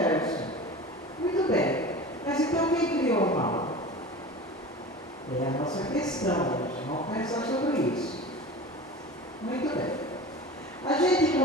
Muito bem, mas então quem criou o mal? É a nossa questão hoje, vamos pensar sobre isso. Muito bem. A gente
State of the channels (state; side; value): normal; both; correlation 0.35